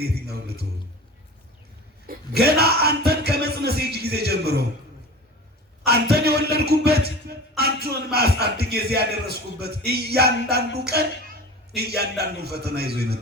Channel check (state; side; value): normal; both; correlation 0.36